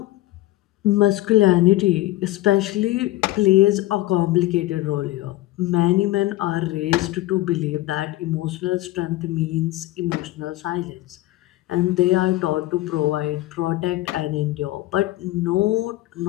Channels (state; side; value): quieter; right; 17.3 dB